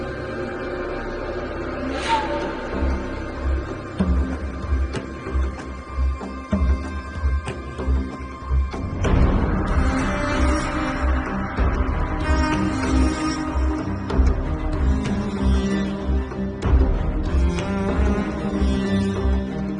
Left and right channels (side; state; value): both; identical; correlation 1.00